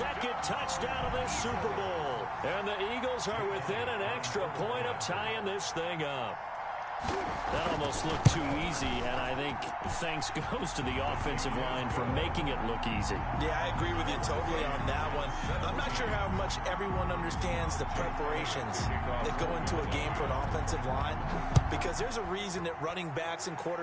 touchdown of this Super Bowl. And the Eagles are within an extra point of tying this thing up. That almost looked too easy, and I think thanks goes to the offensive line for making it look easy. Yeah, I agree with you totally on that one. I'm not sure how much everyone understands the preparations that go into a game for an offensive line, because there's a reason that running backs and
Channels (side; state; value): both; identical; correlation 1.00